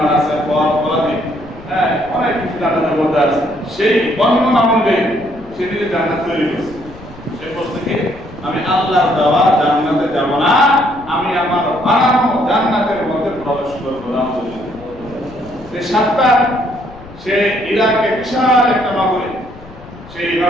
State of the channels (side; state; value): left; noise; rumble, 19 dB below the sound